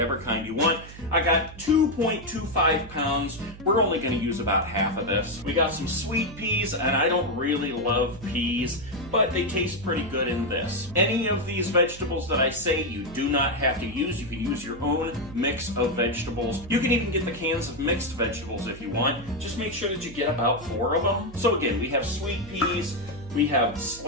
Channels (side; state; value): right; noise; hum, 16 dB below the sound